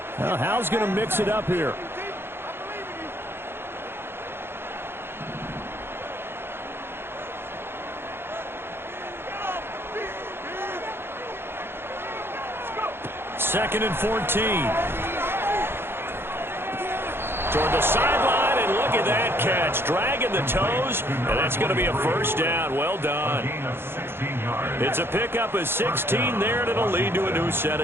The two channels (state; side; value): late; left; 0.11 ms